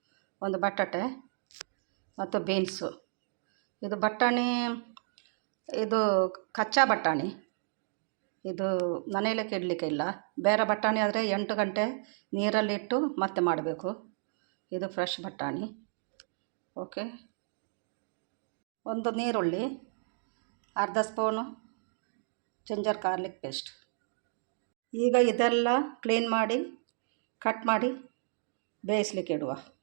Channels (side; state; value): left; silent; digital silence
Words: ಒಂದು ಬಟಾಟೆ ಮತ್ತು ಬೀನ್ಸು. ಇದು ಬಟಾಣಿ, ಇದು ಕಚ್ಚಾ ಬಟಾಣಿ. ಇದು ಮನೆಯಲ್ಲೇ ಇಡಲಿಕ್ಕೆ ಇಲ್ಲ. ಬೇರೆ ಬಟಾಣಿ ಆದರೆ 8 ಗಂಟೆ ನೀರಲ್ಲಿಟ್ಟು ಮತ್ತೆ ಮಾಡಬೇಕು. ಇದು ಫ್ರೆಶ್ ಬಟಾಣಿ. ಓಕೆ, ಒಂದು ನೀರುಳ್ಳಿ, ಅರ್ಧ ಸ್ಪೂನು ಜಿಂಜರ್ ಗಾರ್ಲಿಕ್ ಪೇಸ್ಟ್. ಈಗ ಇದೆಲ್ಲ ಕ್ಲೀನ್ ಮಾಡಿ ಕಟ್ ಮಾಡಿ ಬೇಯಿಸ್ಲಿಕ್ಕೆ ಇಡುವ.